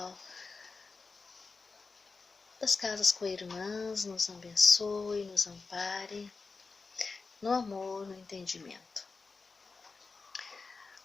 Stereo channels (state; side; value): quieter; right; 4.3 dB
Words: das casas co-irmãs nos abençoe, nos ampare, no amor, no entendimento.